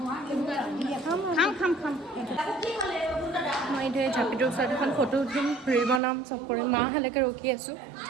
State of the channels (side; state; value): left; drops out; at 6.0 s